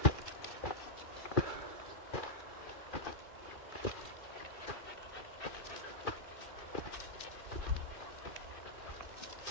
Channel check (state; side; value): late; right; 2.4 ms